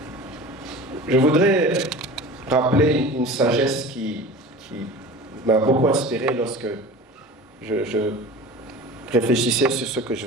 je voudrais rappeler une sagesse qui m'a beaucoup inspiré lorsque je réfléchissais sur ce que je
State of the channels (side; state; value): both; normal; correlation 0.37